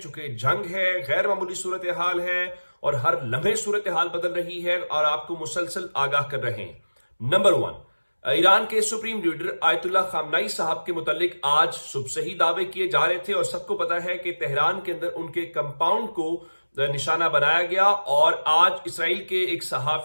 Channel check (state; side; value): inverted; both; correlation -1.00